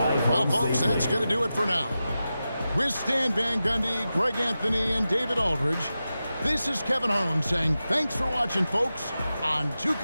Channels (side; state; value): both; inverted; correlation -0.92